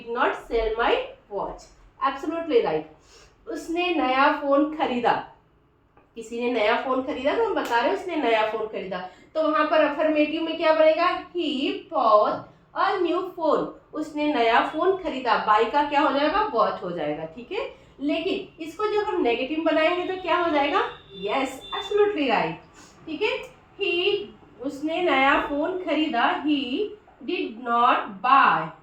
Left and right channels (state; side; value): identical; both; correlation 1.00